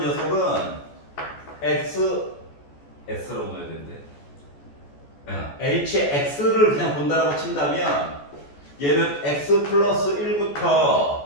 녀석은 S라고 넣어야 되는데. HX를 그냥 본다라고 친다면 얘는 X 플러스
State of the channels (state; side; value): late; right; 14 ms